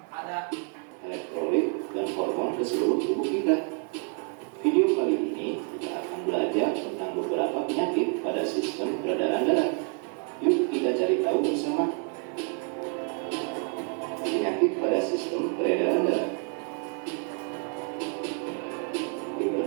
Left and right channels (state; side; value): quieter; left; 39.2 dB